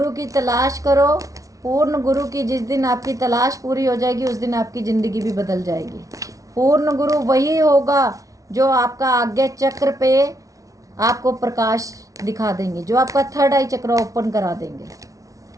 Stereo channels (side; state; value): left; late; 0.17 ms